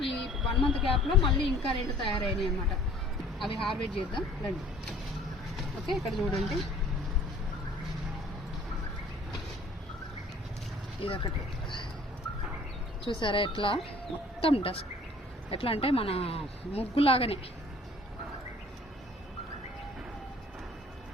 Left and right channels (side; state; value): both; normal; correlation 0.53